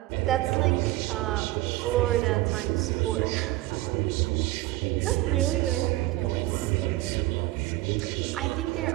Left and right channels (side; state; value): left; quieter; 18.0 dB